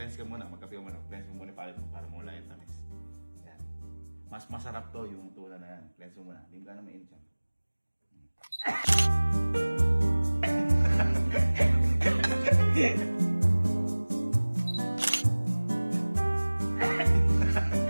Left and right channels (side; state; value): both; inverted; correlation -1.00